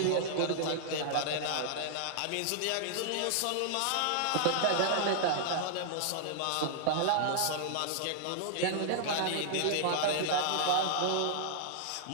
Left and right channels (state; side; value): different; both; correlation -0.01